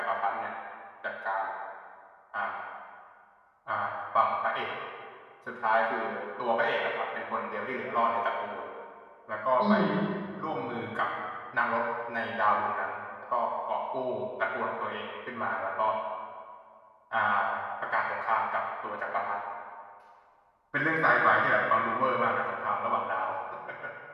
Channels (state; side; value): identical; both; correlation 1.00